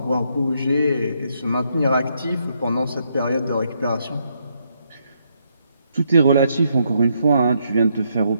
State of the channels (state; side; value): inverted; both; correlation -0.76